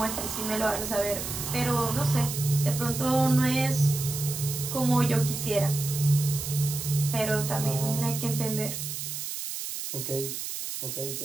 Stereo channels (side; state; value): right; noise; hiss, 6 dB below the sound